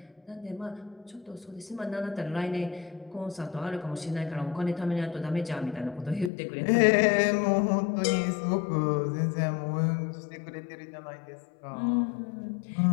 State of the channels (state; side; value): drops out; right; at 6.3 s